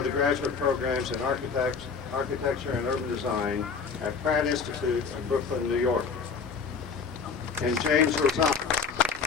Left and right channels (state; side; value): quieter; right; 5.4 dB